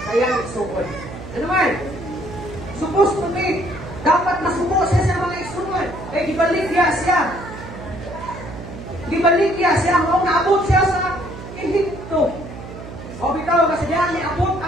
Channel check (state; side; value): noise; right; hum, 12 dB below the sound